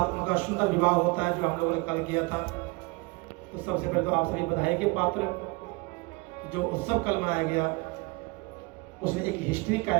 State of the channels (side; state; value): left; quieter; 26.2 dB